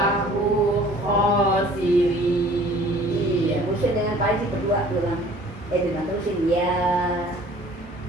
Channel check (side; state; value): both; normal; correlation 0.51